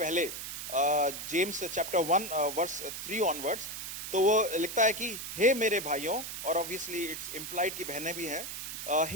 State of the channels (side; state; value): right; noise; hiss, 7 dB below the sound